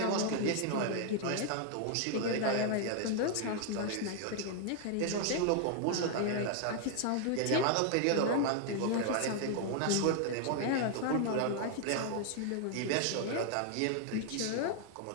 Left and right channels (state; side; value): different; both; correlation 0.00